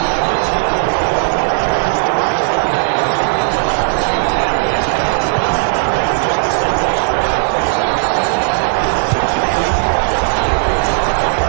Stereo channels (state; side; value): silent; left; 60 dB below the other